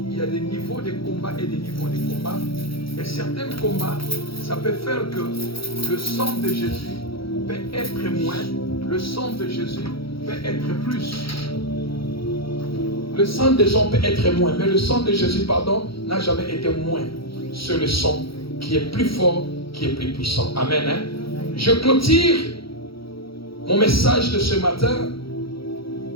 il y a des niveaux de combat et des niveaux de combat. Et certains combats, ça peut faire que le sang de Jésus peut être moins, le sang de Jésus peut être plus. Le sang des gens peut être moins, mais le sang de Jésus, n'a jamais été moins. C'est le sang qui est plus fort, qui est plus puissant. Amen. Hein? Je clôture mon message de ce matin.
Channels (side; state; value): right; late; 0.75 ms